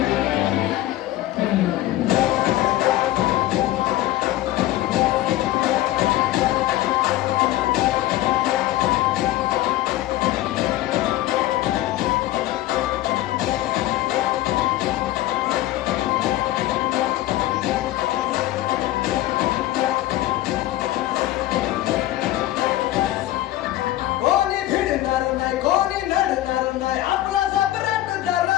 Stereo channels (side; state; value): right; quieter; 15.2 dB